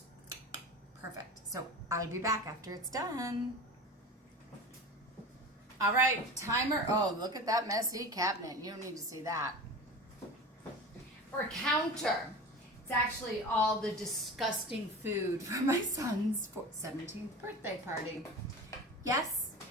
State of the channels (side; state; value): both; normal; correlation 0.32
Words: perfect. So I'll be back after it's done. All right, timer. Oh, look at that messy cabinet. You don't need to see that. Or counter. It's actually all the disgusting food for my son's 17th birthday party. Yes,